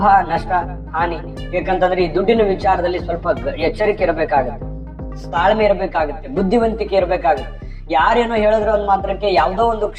ನಷ್ಟ ಹಾನಿ. ಯಾಕಂತಂದ್ರೆ ಈ ದುಡ್ಡಿನ ವಿಚಾರದಲ್ಲಿ ಸ್ವಲ್ಪ ಎಚ್ಚರಿಕೆ ಇರಬೇಕಾಗುತ್ತೆ, ತಾಳ್ಮೆ ಇರಬೇಕಾಗುತ್ತೆ, ಬುದ್ಧಿವಂತಿಕೆ ಇರಬೇಕಾಗುತ್ತೆ. ಯಾರೇನೋ ಹೇಳಿದ್ರು ಒಂದ್ ಮಾತ್ರಕ್ಕೆ ಯಾವ್ದೋ ಒಂದು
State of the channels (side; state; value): both; identical; correlation 1.00